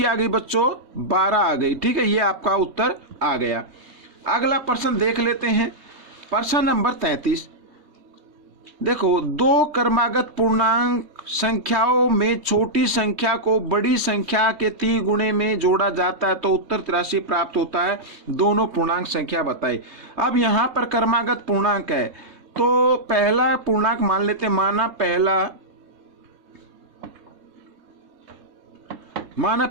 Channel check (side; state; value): left; late; 3.2 ms